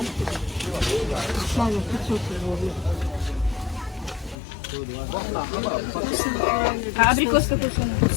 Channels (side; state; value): right; drops out; at 4.4 s